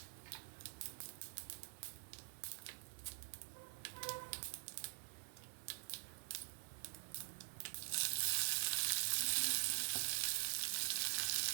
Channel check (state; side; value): silent; left; digital silence